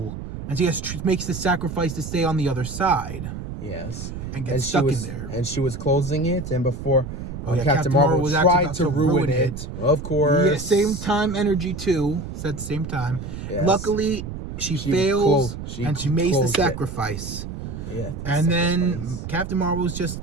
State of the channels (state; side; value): noise; right; rumble, 8 dB below the sound